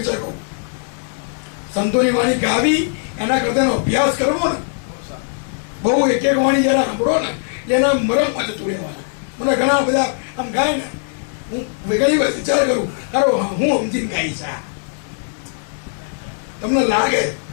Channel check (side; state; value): right; silent; 66 dB below the other